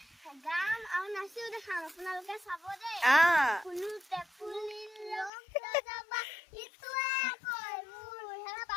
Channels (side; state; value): right; drops out; at 5.3 s